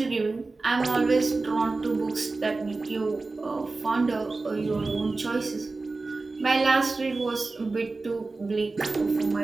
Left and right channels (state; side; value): quieter; left; 3.6 dB